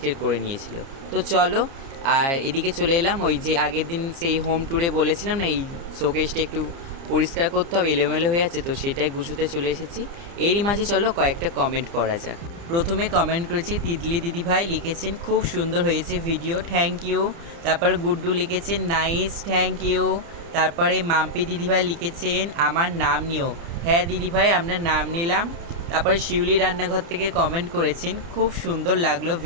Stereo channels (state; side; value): late; left; 29 ms